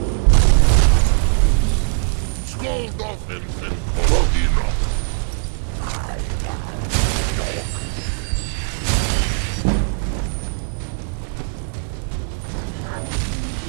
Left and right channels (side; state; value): left; silent; digital silence